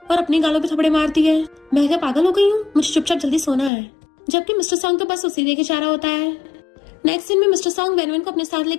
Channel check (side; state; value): right; drops out; at 3.7 s